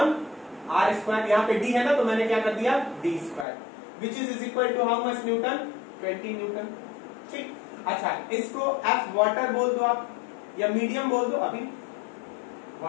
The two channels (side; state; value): right; drops out; at 3.5 s